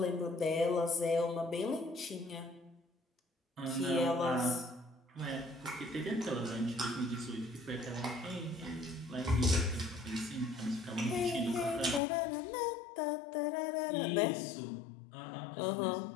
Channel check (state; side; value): drops out; right; at 12.0 s